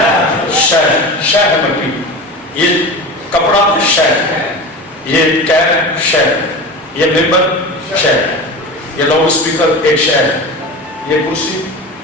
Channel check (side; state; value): both; normal; correlation 0.30